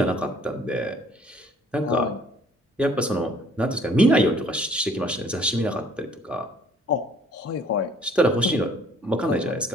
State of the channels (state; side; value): normal; both; correlation 0.58